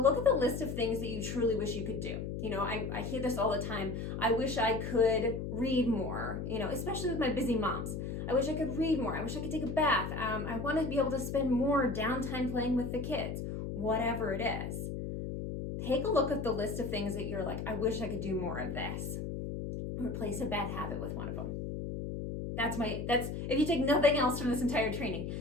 at the list of things that you truly wish you could do. You know, I hear this all the time. I wish I could read more, especially with my busy moms. I wish I could read more. I wish I could take a bath. I want to be able to spend more downtime playing with the kids, whatever it is. Take a look at the list of things that you're like, I wish I could do more of this. Replace a bad habit with one of them. That's if you take nothing else from this entire training,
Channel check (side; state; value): left; noise; hum, 5 dB below the sound